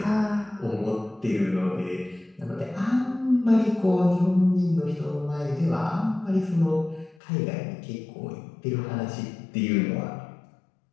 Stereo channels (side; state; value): right; drops out; at 7.2 s